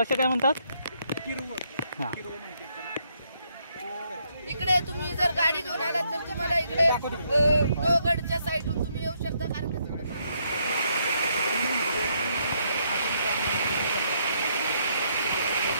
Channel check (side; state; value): both; inverted; correlation -0.73